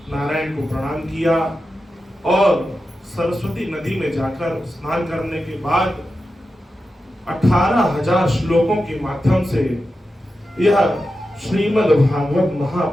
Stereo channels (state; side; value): normal; both; correlation 0.91